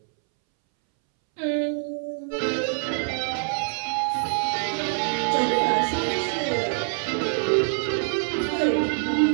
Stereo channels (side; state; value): left; silent; 62 dB below the other